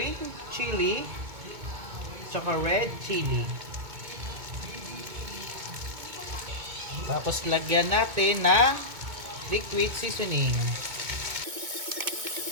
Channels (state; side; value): late; left; 2.2 ms